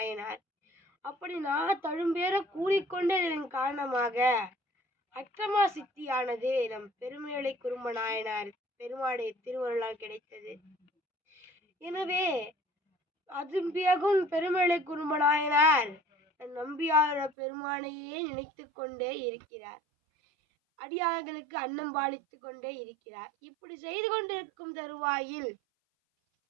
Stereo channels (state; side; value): drops out; left; at 17.3 s